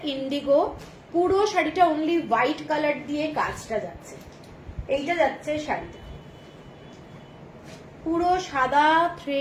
ইন্ডিগো, পুরো শাড়িটা অনলি হোয়াইট কালার দিয়ে কাজটা যাচ্ছে। এইটা যাচ্ছে শাড়িটা, পুরো সাদা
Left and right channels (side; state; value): both; identical; correlation 1.00